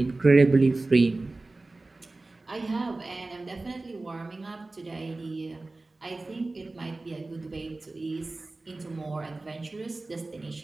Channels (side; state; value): left; quieter; 3.2 dB